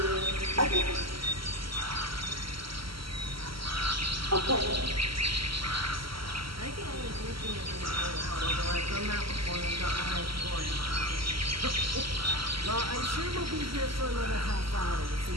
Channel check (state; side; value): late; left; 0.75 ms